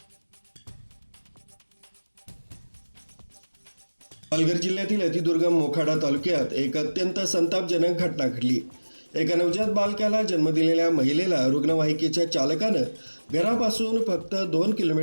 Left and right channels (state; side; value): inverted; both; correlation -1.00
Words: पालघर जिल्ह्यातील अतिदुर्गम मोखाडा तालुक्यात एक अत्यंत संतापजनक घटना घडली। एका नवजात बालकाला जन्म दिलेल्या महिलेला रुग्णवाहिकेच्या चालकानं घरापासून फक्त 2